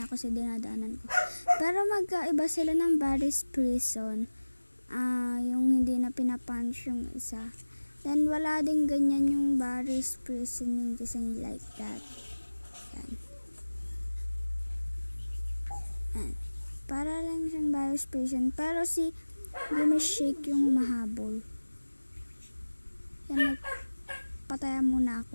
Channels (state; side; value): inverted; both; correlation -1.00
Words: ako sa dinadaanan ko. Pero magkaiba sila ng Paris Prison. Yung hindi na pinapunch yung isa. Then, wala din ganyan yung Paris Prison yung design like that. Yan. Yan. Para lang siyang Paris Prison. Pero si Grimace Shake yung mahabol. Yan, pataya muna